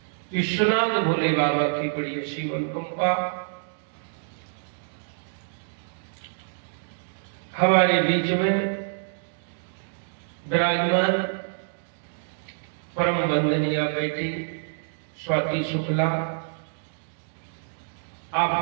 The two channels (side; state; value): left; silent; digital silence